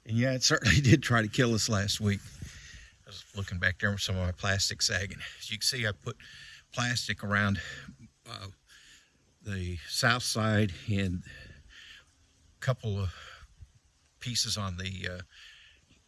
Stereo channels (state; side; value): identical; both; correlation 1.00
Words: And yeah, it certainly did try to kill us last week. I was looking back there with some of my plastic sagging. As you can see, I put plastic around the south side and a couple of pieces on the